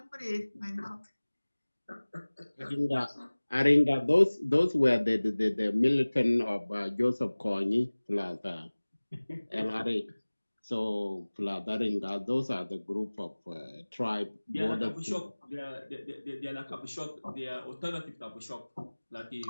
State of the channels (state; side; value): inverted; both; correlation -1.00